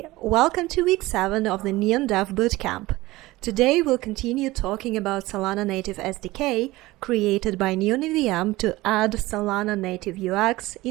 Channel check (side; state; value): left; quieter; 19.0 dB